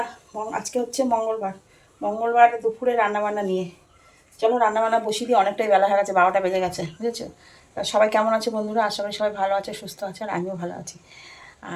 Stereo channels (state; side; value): identical; both; correlation 1.00